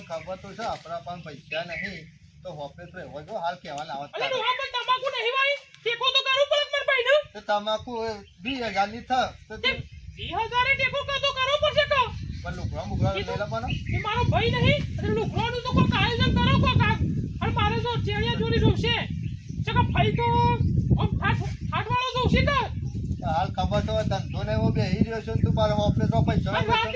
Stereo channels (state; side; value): identical; both; correlation 1.00